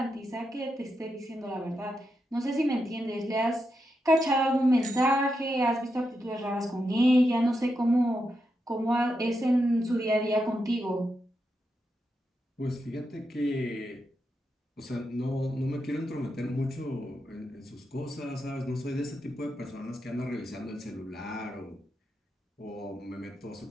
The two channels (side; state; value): both; normal; correlation 0.85